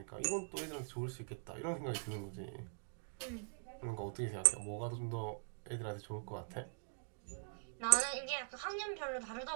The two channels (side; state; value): left; silent; digital silence